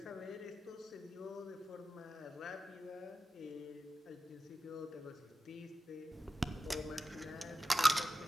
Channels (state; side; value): normal; both; correlation 0.94